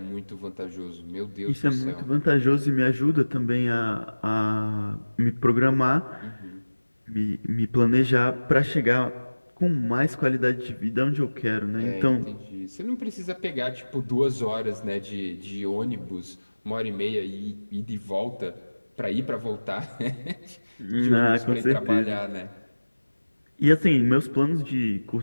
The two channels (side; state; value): both; inverted; correlation -1.00